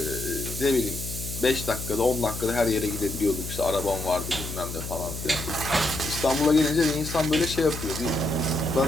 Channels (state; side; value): noise; left; hum, 8 dB below the sound